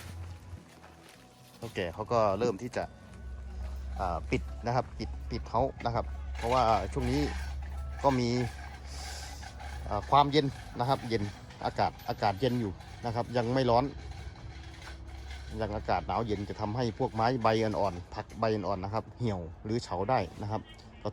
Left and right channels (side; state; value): both; identical; correlation 1.00